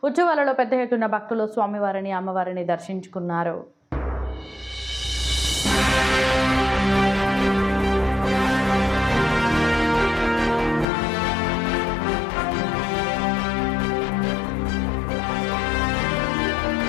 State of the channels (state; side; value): drops out; right; at 10.9 s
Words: ఉత్సవాలలో పెద్ద ఎత్తున భక్తులు స్వామివారిని అమ్మవారిని దర్శించుకున్నారు.